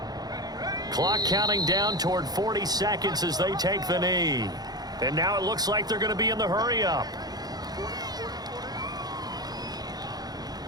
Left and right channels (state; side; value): late; left; 0.19 ms